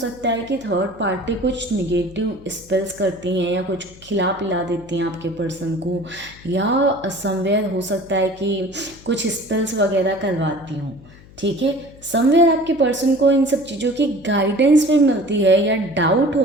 है कि थर्ड पार्टी कुछ निगेटिव स्पेल्स करती हैं या कुछ खिला पिला देती हैं आपके पर्सन को, या समवेयर हो सकता है कि कुछ स्पेल्स वगैरह करवाती हूँ। ठीक है, समवेयर आपके पर्सन को इन सब चीज़ों की गाइडेंस भी मिलती है या डाउट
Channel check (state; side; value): noise; left; hum, 22 dB below the sound